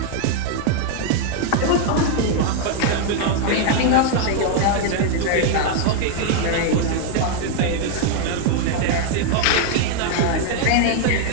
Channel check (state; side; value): different; both; correlation 0.00